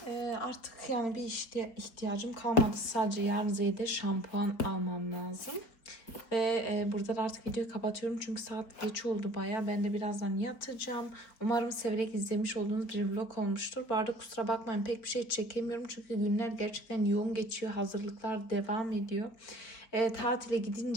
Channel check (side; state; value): right; late; 4.4 ms